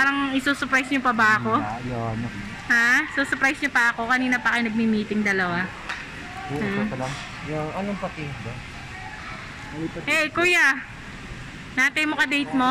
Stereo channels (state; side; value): identical; both; correlation 1.00